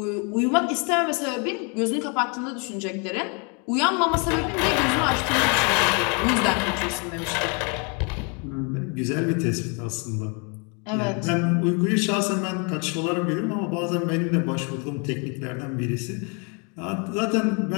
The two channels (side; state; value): right; quieter; 34.6 dB